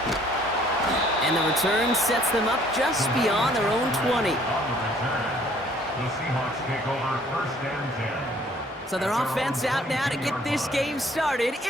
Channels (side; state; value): both; normal; correlation 0.59